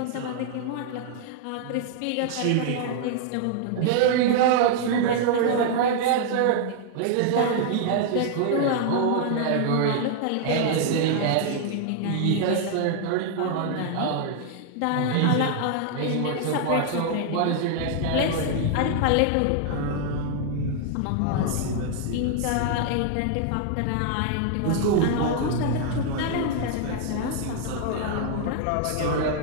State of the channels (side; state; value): both; different; correlation 0.00